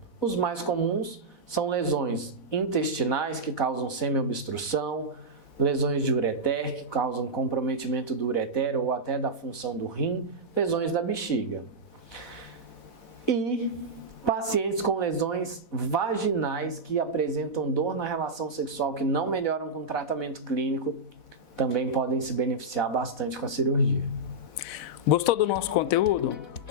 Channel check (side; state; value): right; late; 4.1 ms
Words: Os mais comuns são lesões intestinais que causam semiobstrução, lesões de ureter que causam comprometimento do ureter ou até da função do rim, lesões da bexiga. E pacientes com lesões vaginais que apresentam dor na relação sexual que não melhoram com tratamento clínico também podem se beneficiar bastante com a cirurgia. Gostou do nosso conteúdo?